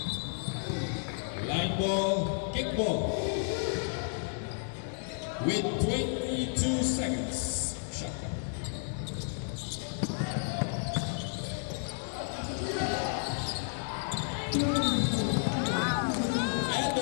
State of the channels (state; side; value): silent; right; digital silence